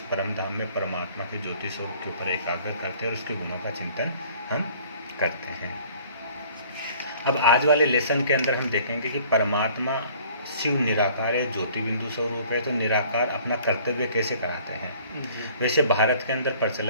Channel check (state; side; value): inverted; both; correlation -0.54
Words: परम धाम में परमात्मा के ज्योति स्वरूप के ऊपर एकाग्र करते हैं और उसके गुणों का चिंतन हम करते हैं। अब आज वाले लेसन के अंदर हम देखेंगे कि परमात्मा शिव निराकार है, ज्योति बिंदु स्वरूप है, तो निराकार अपना कर्तव्य कैसे कराते हैं। वैसे भारत के अंदर